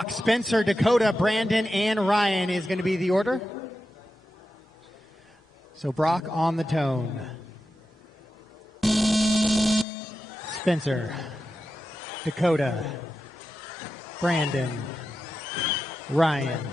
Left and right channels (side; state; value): both; normal; correlation 0.90